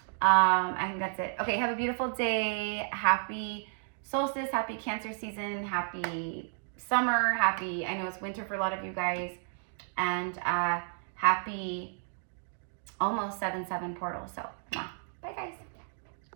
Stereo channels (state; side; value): silent; left; 56 dB below the other